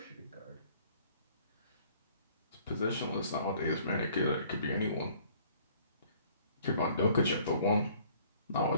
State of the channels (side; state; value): both; inverted; correlation -0.57